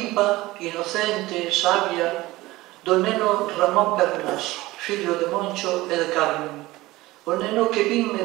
inocente, sabia do neno Ramón Pernas, fillo de Moncho e de Carmen. O neno que vin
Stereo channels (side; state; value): left; quieter; 18.8 dB